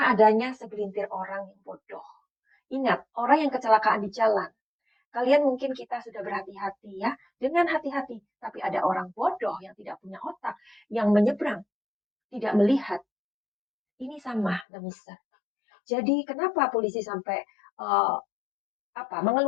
adanya segelintir orang yang bodoh. Ingat, orang yang kecelakaan di jalan. Kalian mungkin kita sudah berhati-hati ya, dengan hati-hati. Tapi ada orang bodoh yang tidak punya otak, yang menyeberang, tidak melihat. Ini sama demiser. Jadi kenapa polisi sampai uh,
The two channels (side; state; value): right; drops out; at 14.7 s